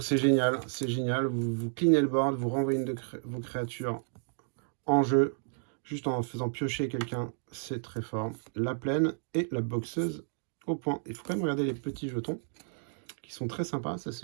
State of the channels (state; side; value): silent; left; digital silence